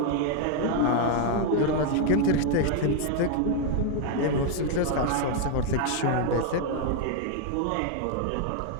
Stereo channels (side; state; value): both; different; correlation 0.00